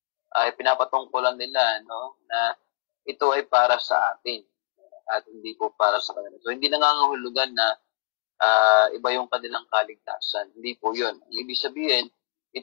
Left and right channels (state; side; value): quieter; right; 25.5 dB